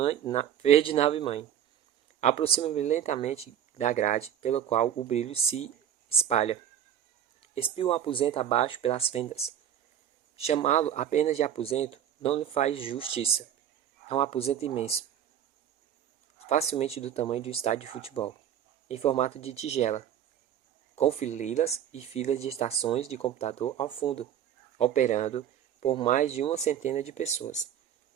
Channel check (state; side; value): quieter; left; 9.9 dB